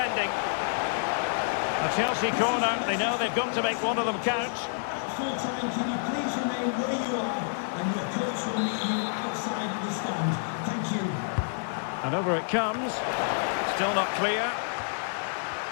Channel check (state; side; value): silent; right; 59 dB below the other